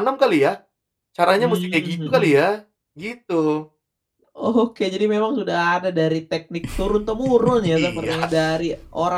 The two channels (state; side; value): identical; both; correlation 1.00